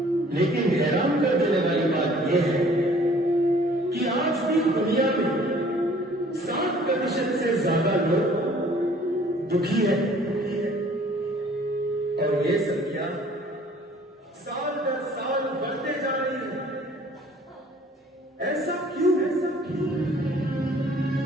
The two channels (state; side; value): normal; both; correlation 0.55